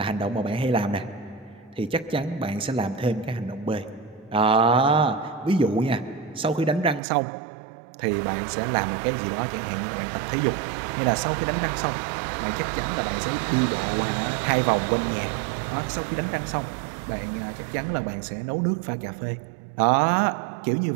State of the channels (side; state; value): left; drops out; at 7.0 s